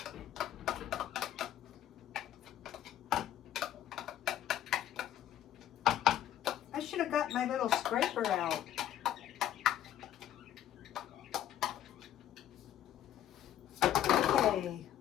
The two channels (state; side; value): quieter; right; 11.4 dB